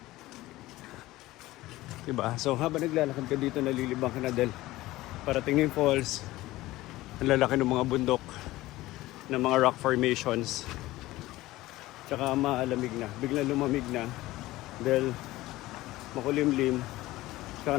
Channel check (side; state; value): right; quieter; 17.6 dB